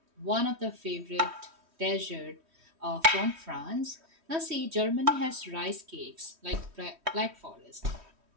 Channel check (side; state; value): left; late; 3.1 ms